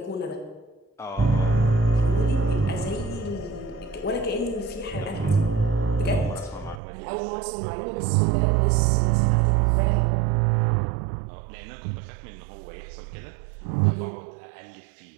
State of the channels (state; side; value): drops out; left; at 6.8 s